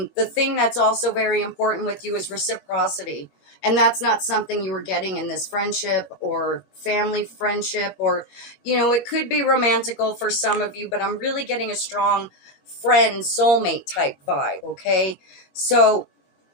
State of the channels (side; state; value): right; late; 21 ms